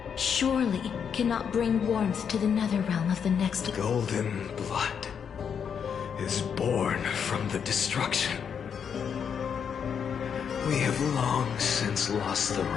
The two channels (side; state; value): right; quieter; 7.3 dB